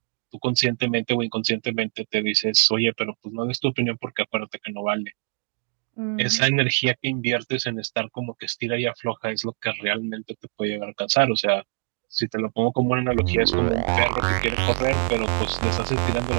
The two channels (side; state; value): left; quieter; 39.9 dB